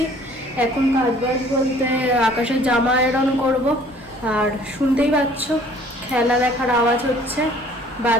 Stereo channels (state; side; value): normal; both; correlation 0.54